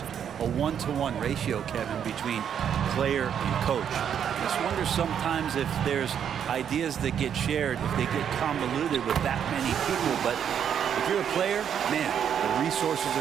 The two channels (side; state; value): left; quieter; 8.5 dB